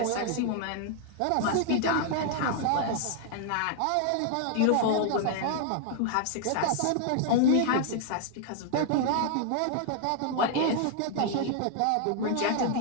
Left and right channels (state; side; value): different; both; correlation 0.00